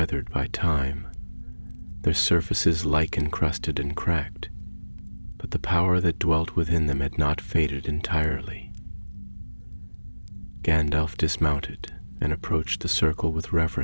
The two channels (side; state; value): both; inverted; correlation -1.00